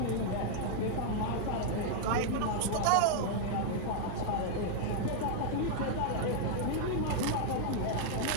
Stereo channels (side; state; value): both; different; correlation -0.01